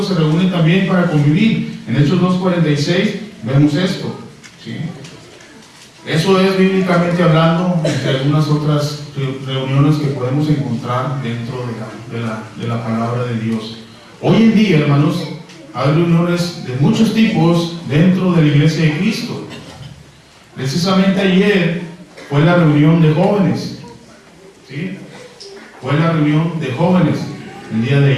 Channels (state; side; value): identical; both; correlation 1.00